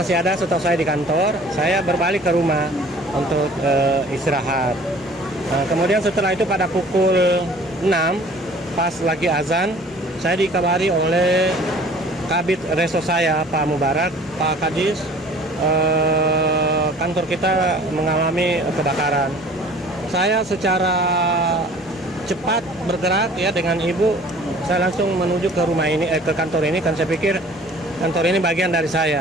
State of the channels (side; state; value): both; normal; correlation 0.50